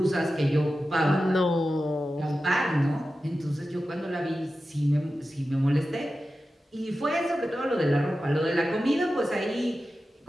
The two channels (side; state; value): both; normal; correlation 0.93